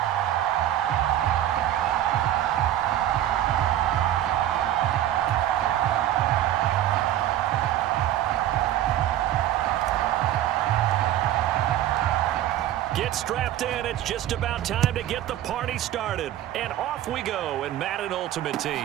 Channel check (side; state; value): left; quieter; 12.5 dB